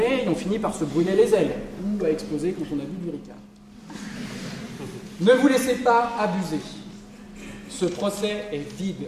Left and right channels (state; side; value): identical; both; correlation 1.00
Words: on finit par se brûler les ailes, ou à exploser quand on a bu du Ricard. Ne vous laissez pas abuser. Ce procès est